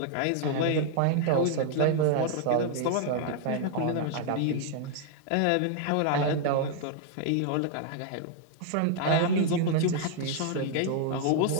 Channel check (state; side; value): different; both; correlation -0.01